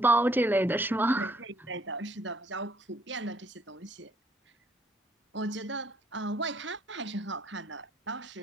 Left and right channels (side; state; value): both; normal; correlation 0.65